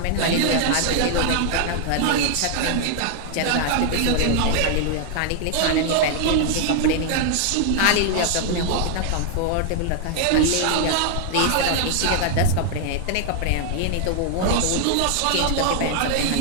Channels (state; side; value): different; both; correlation 0.00